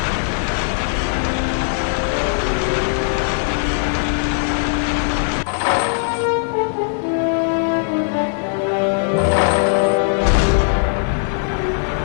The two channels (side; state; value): right; silent; 58 dB below the other